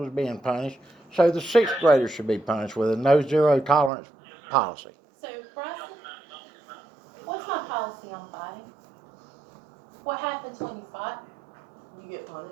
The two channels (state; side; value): drops out; left; at 3.9 s